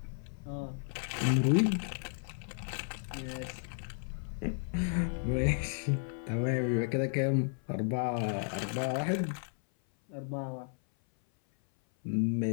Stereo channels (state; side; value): silent; right; 55 dB below the other